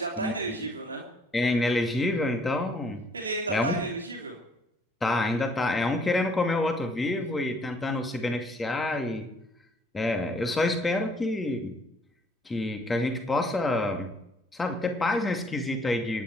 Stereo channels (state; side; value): normal; both; correlation 0.63